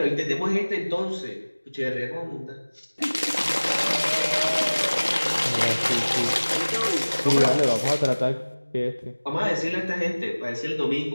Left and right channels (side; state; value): both; inverted; correlation -1.00